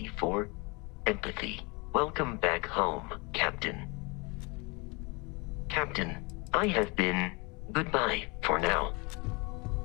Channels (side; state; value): right; quieter; 28.4 dB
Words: for empathy. Welcome back home, Captain. Captain, I have been goodbye for now.